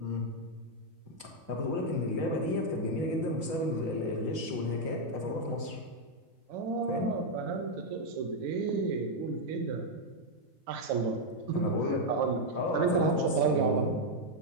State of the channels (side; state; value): left; late; 7.1 ms